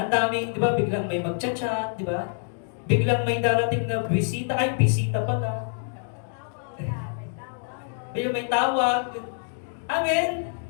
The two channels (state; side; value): silent; right; digital silence